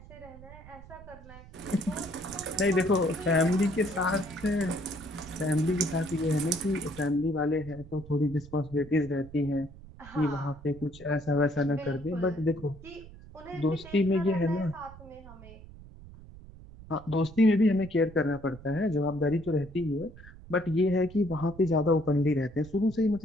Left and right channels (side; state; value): right; noise; rumble, 18 dB below the sound